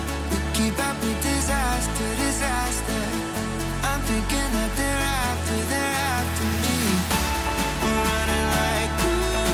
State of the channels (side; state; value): both; identical; correlation 1.00